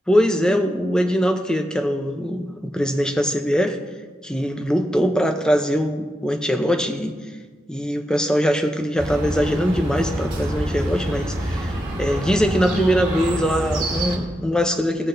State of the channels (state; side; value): normal; both; correlation 0.86